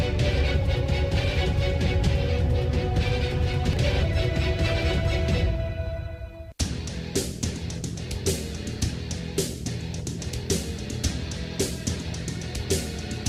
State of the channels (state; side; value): identical; both; correlation 1.00